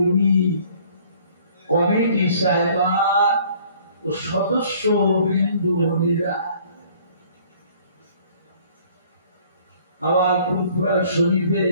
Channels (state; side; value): inverted; both; correlation -0.56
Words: কমিটি সাহেবান ও সদস্য বৃন্দরা আমার ফুলপুরা শরীফে